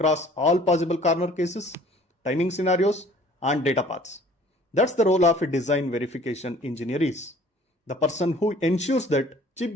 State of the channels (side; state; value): both; normal; correlation 0.53